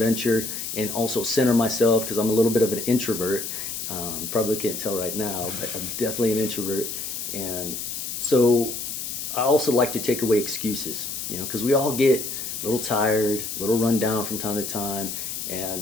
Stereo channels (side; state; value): left; noise; hiss, 5 dB below the sound